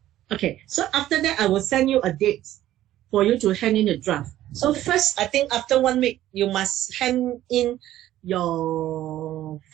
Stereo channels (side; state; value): left; quieter; 13.6 dB